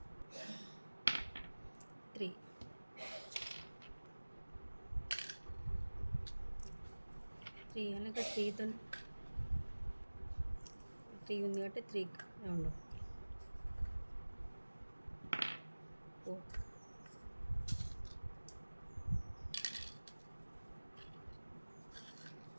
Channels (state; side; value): inverted; both; correlation -1.00